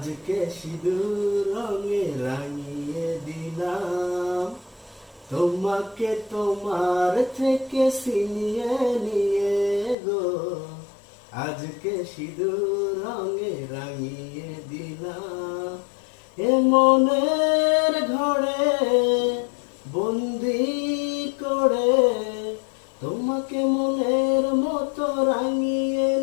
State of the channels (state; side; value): drops out; right; at 10.0 s